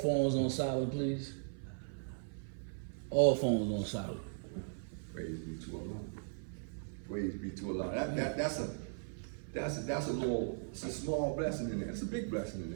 on silent, please? All phones on silent. Praise be to Allah. Praise be to Allah. That's a small blessing in there. It's a big blessing in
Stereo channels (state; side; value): silent; left; 52 dB below the other